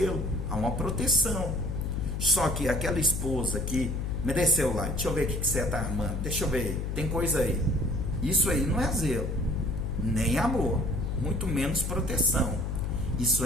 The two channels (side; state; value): left; noise; hum, 2 dB below the sound